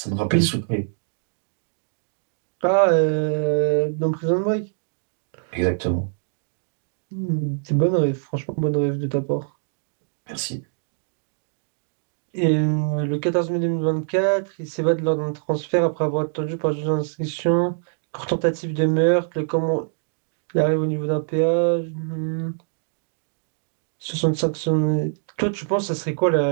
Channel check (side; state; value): left; silent; digital silence